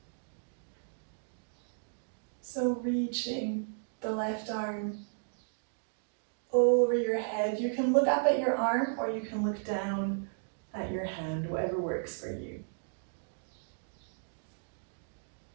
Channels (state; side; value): silent; left; digital silence